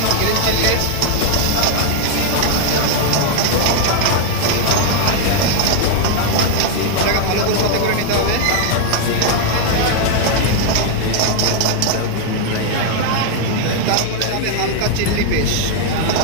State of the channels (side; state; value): both; different; correlation 0.00